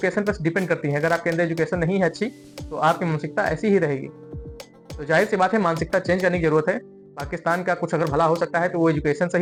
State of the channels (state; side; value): identical; both; correlation 1.00